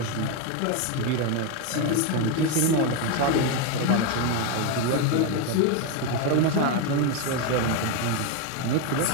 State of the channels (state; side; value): different; both; correlation 0.02